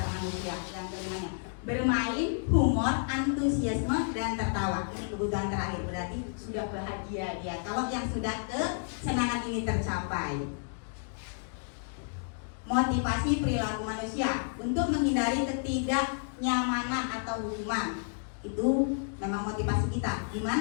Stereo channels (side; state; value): right; silent; digital silence